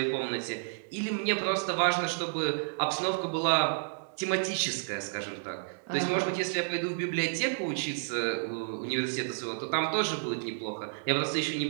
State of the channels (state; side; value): silent; left; digital silence